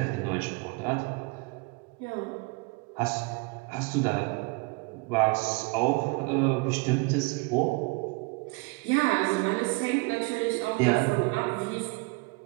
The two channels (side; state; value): left; quieter; 28.0 dB